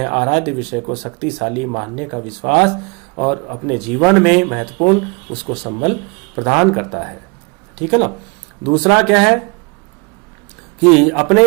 आराध्य विषय को शक्तिशाली मानने का विश्वास और अपने जीवन में महत्वपूर्ण उसको संबल प्रदान करता है। ठीक है ना। दूसरा क्या है कि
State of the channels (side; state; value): left; quieter; 29.4 dB